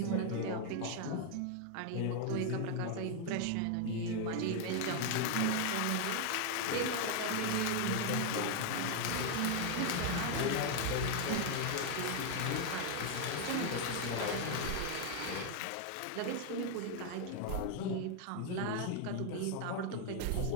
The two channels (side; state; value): both; different; correlation 0.00